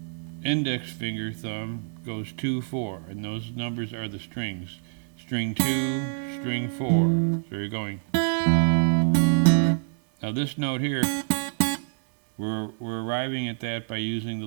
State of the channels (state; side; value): silent; left; digital silence